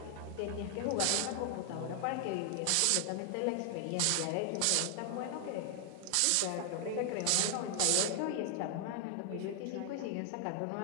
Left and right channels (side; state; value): both; different; correlation 0.00